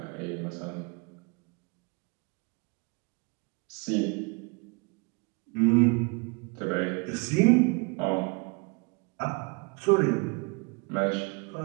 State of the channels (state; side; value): quieter; left; 30.9 dB